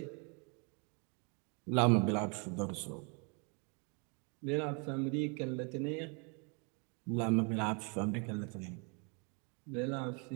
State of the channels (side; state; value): left; quieter; 34.9 dB